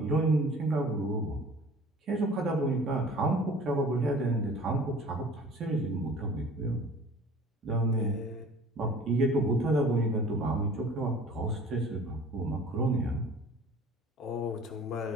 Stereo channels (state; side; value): normal; both; correlation 0.46